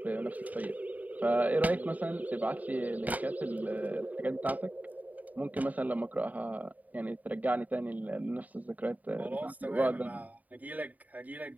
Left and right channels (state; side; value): late; left; 0.075 ms